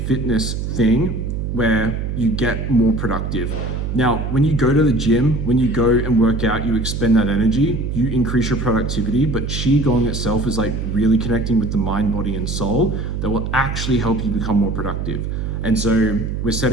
thing where you get more productive. Now, when you go to the gym, when you go and work out, you expend that energy, you increase your productivity, but Qigong itself is like really connecting with the mind, body, and soul that will actually help you become more productive. And so we're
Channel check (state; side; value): noise; right; hum, 3 dB below the sound